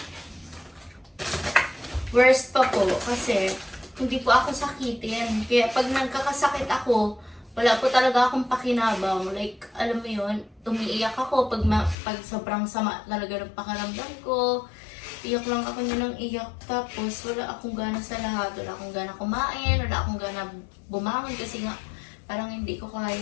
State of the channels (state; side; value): drops out; right; at 12.0 s